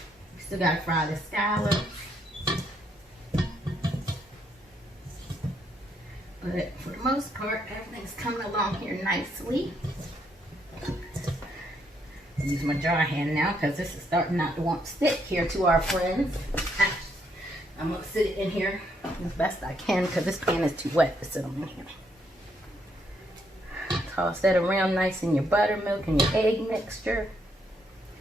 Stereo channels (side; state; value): both; normal; correlation 0.74